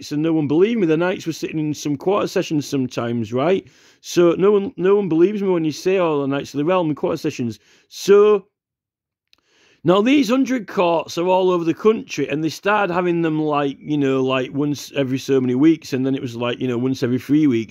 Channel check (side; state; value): both; identical; correlation 1.00